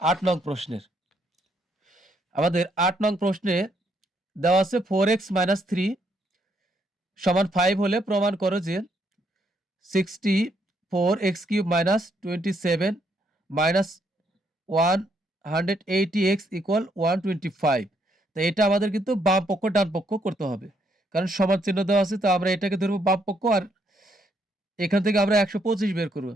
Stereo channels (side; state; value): both; normal; correlation 0.73